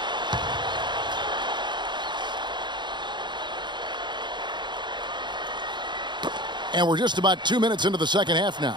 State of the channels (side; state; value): left; late; 0.22 ms